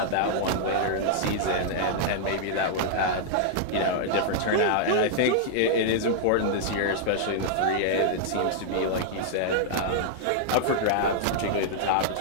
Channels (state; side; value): different; both; correlation -0.01